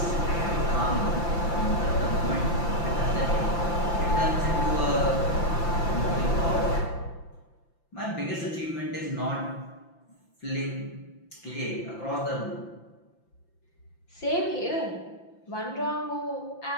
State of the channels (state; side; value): late; right; 5.9 ms